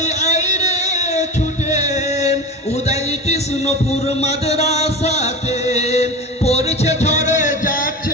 আইরে ছুটে উদয় কৃষ্ণপুর মাদ্রাসাতে। পড়ছে ঝরে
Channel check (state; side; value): normal; both; correlation 0.28